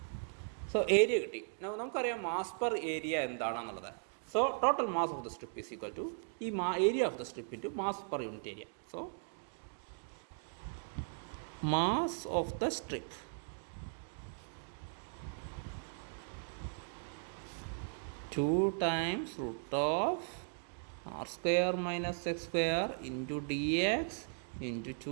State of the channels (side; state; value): left; silent; digital silence